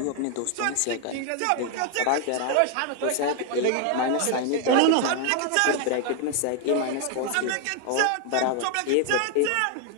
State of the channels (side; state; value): both; different; correlation 0.00